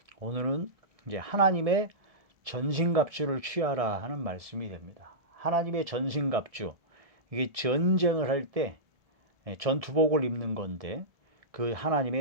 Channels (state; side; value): late; left; 1.7 ms